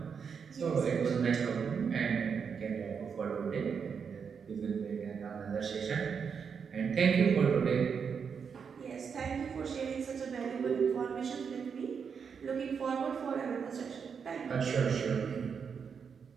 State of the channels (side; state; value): left; quieter; 6.4 dB